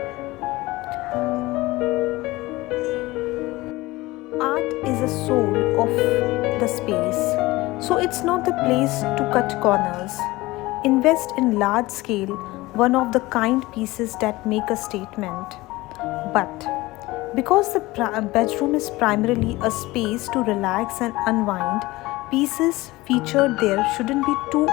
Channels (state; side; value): quieter; right; 20.0 dB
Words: Art is the soul of the space, so it's not the place to cut corners. Invest in large scale, one of the kind pieces that make a statement. But because the bedroom is primarily a space to relax and unwind, pieces featured there shouldn't be too